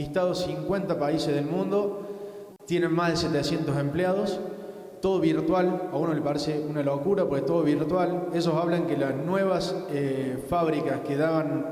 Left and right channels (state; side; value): identical; both; correlation 1.00